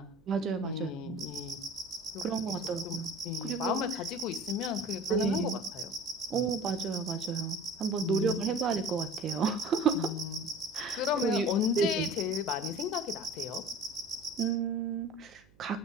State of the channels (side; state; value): right; noise; hum, 29 dB below the sound